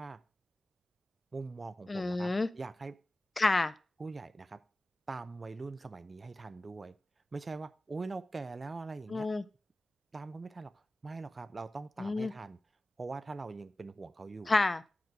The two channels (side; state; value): both; normal; correlation 0.96